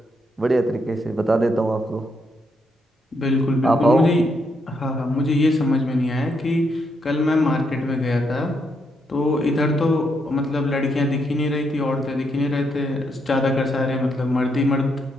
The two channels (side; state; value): both; normal; correlation 0.78